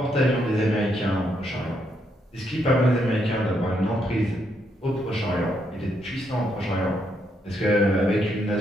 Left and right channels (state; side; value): normal; both; correlation 0.77